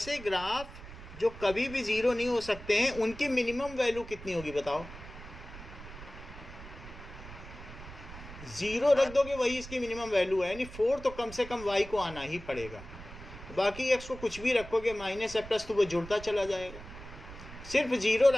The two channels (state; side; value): noise; right; rumble, 14 dB below the sound